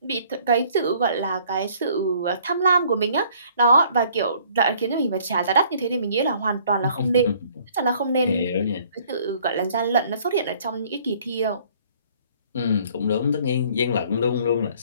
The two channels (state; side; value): inverted; both; correlation -0.58